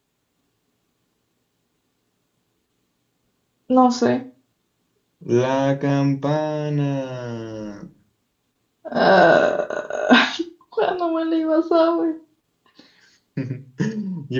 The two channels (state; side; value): identical; both; correlation 1.00